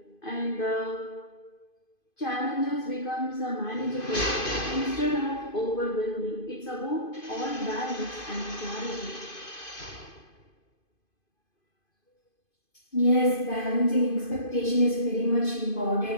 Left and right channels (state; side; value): late; right; 2.5 ms